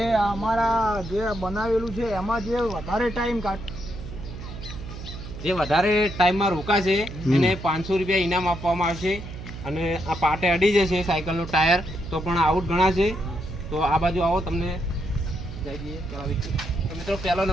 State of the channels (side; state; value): right; noise; hum, 11 dB below the sound